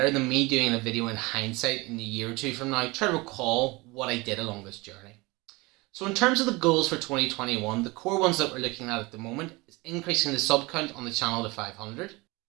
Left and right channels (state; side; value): quieter; left; 23.8 dB